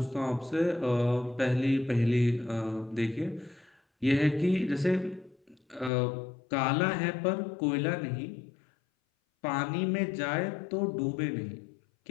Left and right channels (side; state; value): right; drops out; at 5.9 s